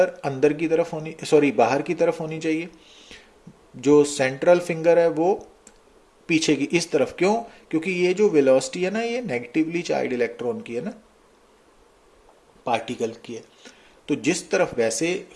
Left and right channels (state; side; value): identical; both; correlation 1.00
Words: अंदर की तरफ होनी, सॉरी बाहर की तरफ होनी चाहिए, जो सेंट्रल फिंगर है वो पीछे की इस तरफ। क्यों? क्योंकि ये जो वेलोसिटी है ना ये नेगेटिवली चार्ज इलेक्ट्रॉन की है ना, पार्टिकल की है। तो जिस तरफ, वैसे